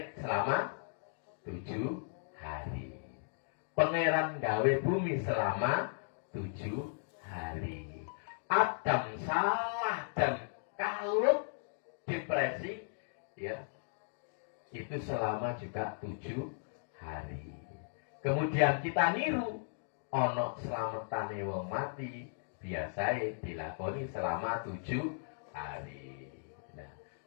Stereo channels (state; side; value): silent; right; digital silence